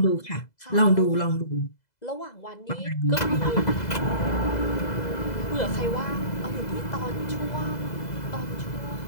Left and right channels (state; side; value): late; right; 2.0 ms